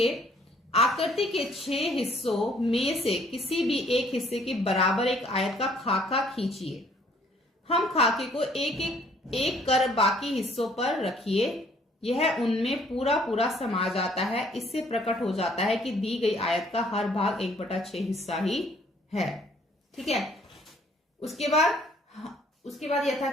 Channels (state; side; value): normal; both; correlation 0.61